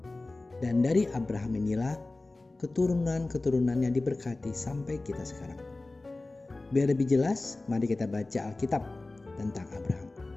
Dan dari Abraham inilah keturunan-keturunannya diberkati sampai kita sekarang. Biar lebih jelas, mari kita baca Alkitab tentang Abraham.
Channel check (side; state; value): right; quieter; 3.1 dB